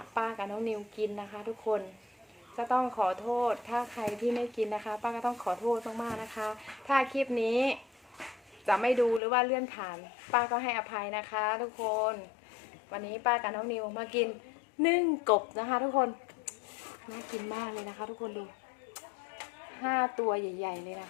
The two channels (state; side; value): drops out; right; at 9.2 s